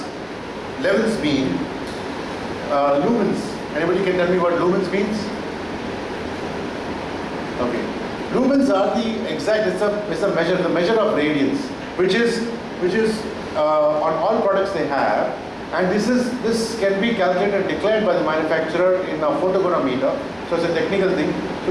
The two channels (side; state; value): both; identical; correlation 1.00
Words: levels mean. Lumens. Anybody can tell me what lumens means? Okay. Lumens are the exact. It's a measure, the measure of radiance, which is on all products they have, and this can be calculated and declared by the manufacturer in a photogrammeter. So it's a technical thing.